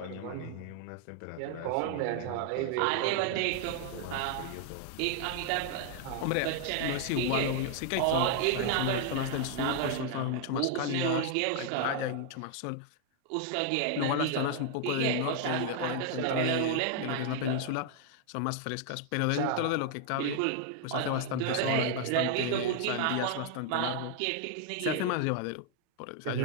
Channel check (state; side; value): different; both; correlation 0.00